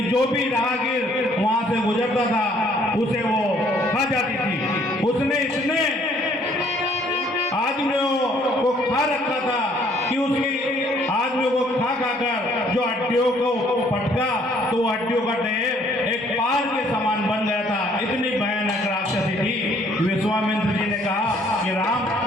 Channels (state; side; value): normal; both; correlation 0.62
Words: जो भी राहगीर वहां से गुजरता था उसे वो खा जाती थी। उसने इतने आदमियों को खा रखा था कि उसकी आदमियों को खा कर जो हड्डियों को पटका तो वो हड्डियों का ढेर एक पार के समान बन गया था। इतनी भयानक राक्षसी थी। विश्वामित्र जी ने कहा कि राम